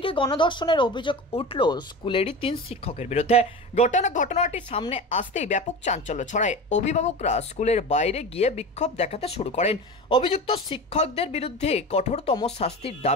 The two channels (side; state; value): both; normal; correlation 0.29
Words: গণধর্ষণের অভিযোগ উঠল স্কুলেরই 3 শিক্ষকের বিরুদ্ধে। ঘটনাটি সামনে আসতেই ব্যাপক চাঞ্চল্য ছড়ায়। অভিভাবকরা স্কুলের বাইরে গিয়ে বিক্ষোভ দেখাতে শুরু করেন। অভিযুক্ত শিক্ষকদের বিরুদ্ধে কঠোরতম শাস্তির